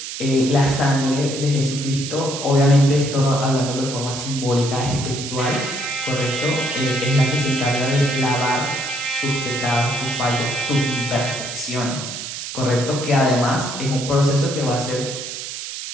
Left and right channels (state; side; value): noise; right; hiss, 8 dB below the sound